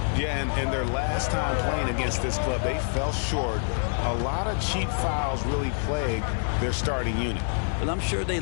Yeah, and their last time playing against this club, they fell short. A lot of cheap fouls really plagued their starting unit. But I'm sure they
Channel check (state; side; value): silent; right; 58 dB below the other